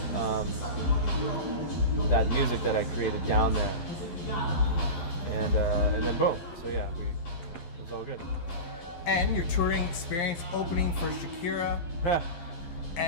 music that I created down there, and then boom. So yeah, it was all good. And your touring experience opening for Shakira,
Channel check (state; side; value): late; right; 12 ms